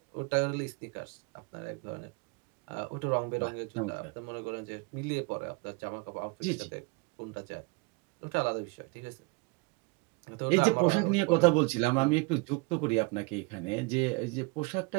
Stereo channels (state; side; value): quieter; left; 28.2 dB